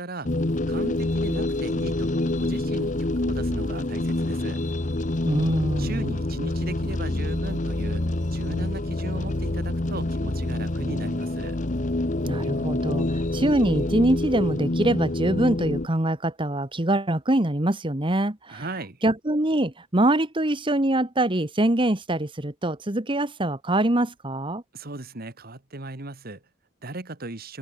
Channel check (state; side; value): normal; both; correlation 0.70